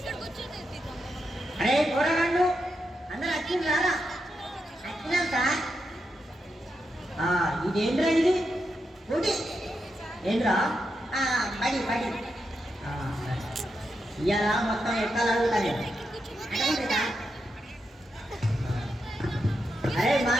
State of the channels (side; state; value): both; normal; correlation 0.85